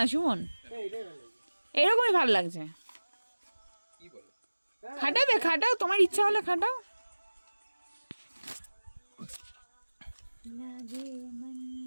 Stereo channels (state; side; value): inverted; both; correlation -1.00